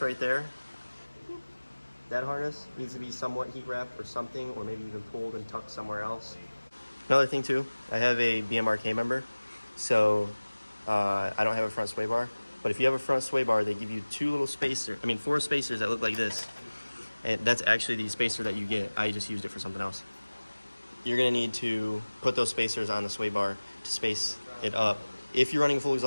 right there, that harness needs to be somewhat heat wrapped or something, or maybe even pulled and tucked somewhere else. Another thing too, I have a BMRK member, so I don't have a front sway bar. But if you have a front sway bar, they give you four spacers that look like this. And that's actually the spacer that you get. I just used it for something else. You're gonna need to put those spacers on the sway bar to space it up if you're running a full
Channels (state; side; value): inverted; both; correlation -1.00